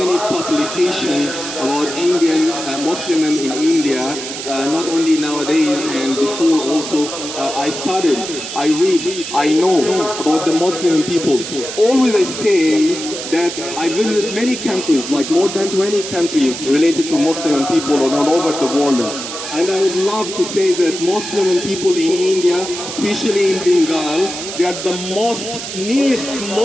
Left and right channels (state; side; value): noise; right; hiss, 8 dB below the sound